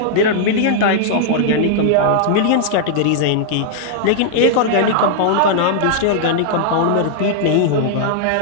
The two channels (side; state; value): both; different; correlation -0.01